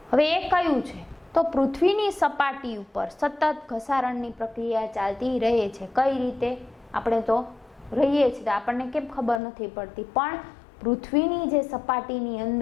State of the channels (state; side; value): drops out; right; at 9.4 s